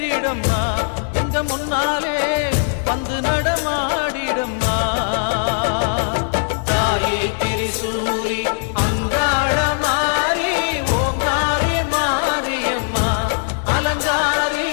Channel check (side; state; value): right; silent; digital silence